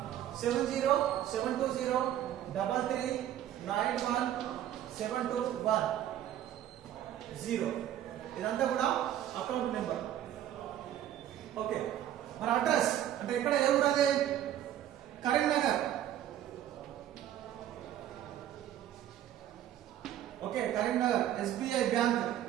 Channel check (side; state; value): left; quieter; 11.6 dB